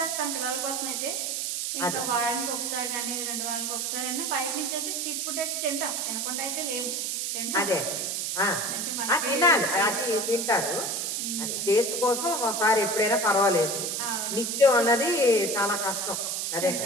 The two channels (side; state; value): right; noise; hiss, 1 dB below the sound